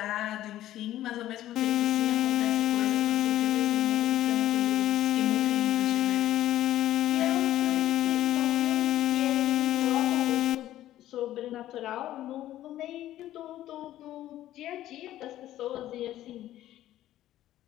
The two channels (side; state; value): right; quieter; 13.6 dB